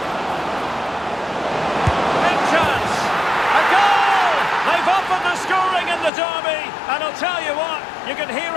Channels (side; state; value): right; drops out; at 6.1 s